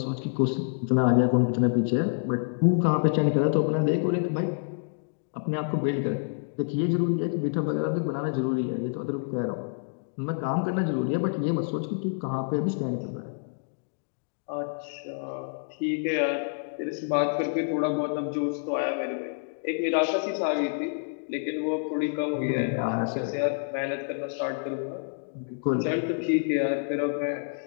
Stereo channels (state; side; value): silent; right; digital silence